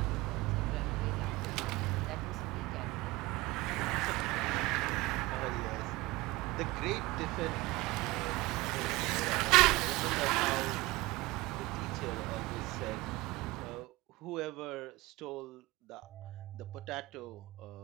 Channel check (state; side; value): quieter; left; 21.0 dB